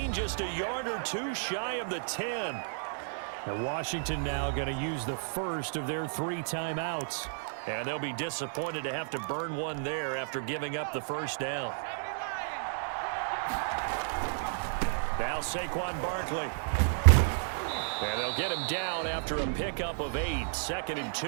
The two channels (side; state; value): left; silent; digital silence